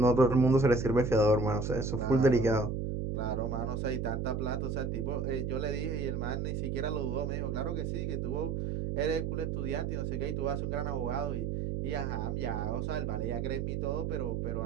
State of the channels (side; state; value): right; noise; hum, 1 dB below the sound